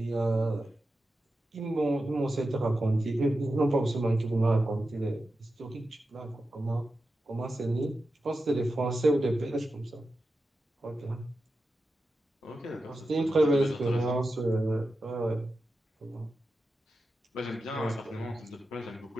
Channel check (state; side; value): normal; both; correlation 0.91